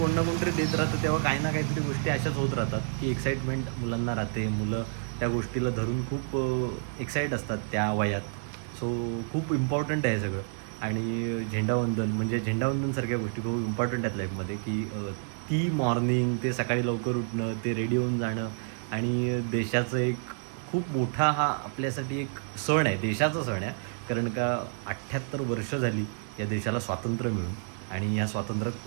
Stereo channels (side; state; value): left; silent; digital silence